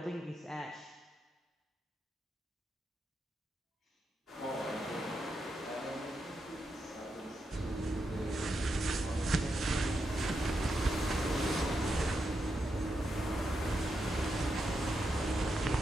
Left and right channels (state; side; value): normal; both; correlation 0.85